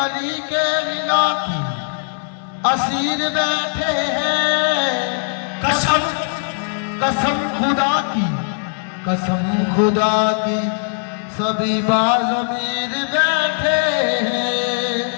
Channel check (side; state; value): right; silent; digital silence